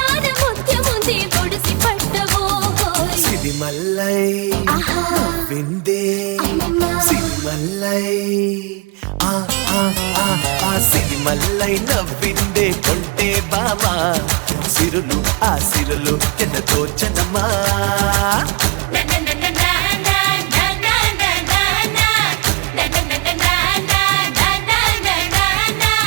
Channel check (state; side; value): quieter; left; 28.8 dB